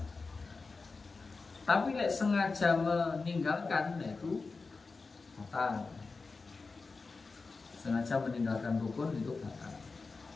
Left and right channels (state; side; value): quieter; right; 4.1 dB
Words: Tapi lek sengaja meninggalkan, yaitu batal. Sengaja meninggalkan rukun itu batal.